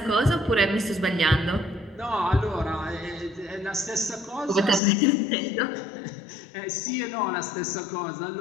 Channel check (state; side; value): drops out; right; at 4.8 s